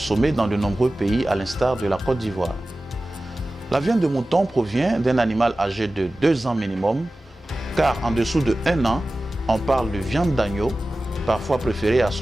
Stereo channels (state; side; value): normal; both; correlation 0.96